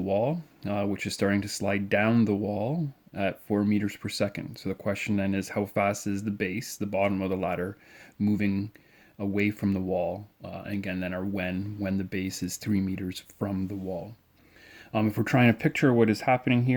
which is starting to slide down the wall at 4 meters per second. So the question then is, how fast is the base, the bottom of the ladder, moving away from the wall? And again, then our when the base is 3 meters from the wall. If we're trying to picture what is happening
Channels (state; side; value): identical; both; correlation 1.00